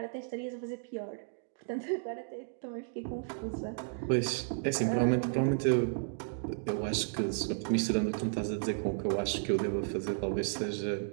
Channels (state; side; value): silent; left; digital silence